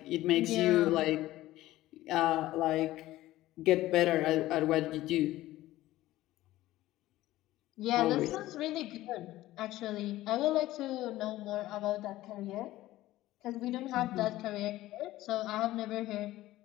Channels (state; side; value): quieter; right; 16.0 dB